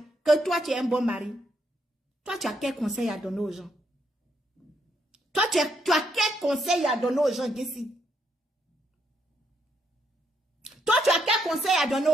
Que toi, tu es un bon mari. Toi, tu as quel conseil à donner aux gens? Toi, tu as quel conseil à donner aux gens, Jessie? Toi, tu as quel conseil à donner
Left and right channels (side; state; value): both; normal; correlation 0.75